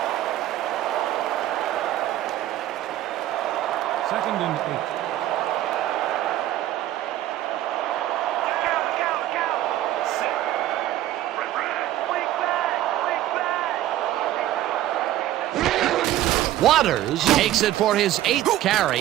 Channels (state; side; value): quieter; left; 13.7 dB